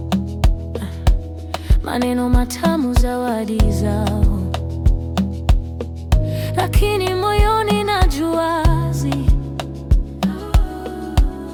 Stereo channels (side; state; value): both; identical; correlation 1.00